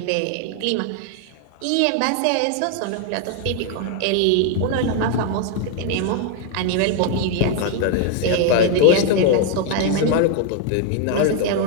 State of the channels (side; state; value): both; different; correlation 0.00